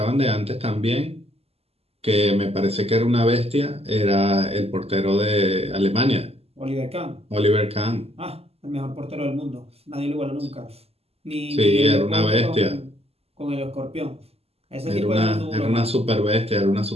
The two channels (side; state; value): left; late; 0.29 ms